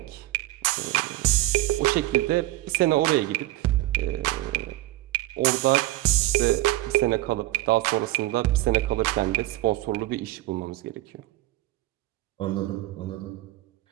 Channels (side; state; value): left; quieter; 17.5 dB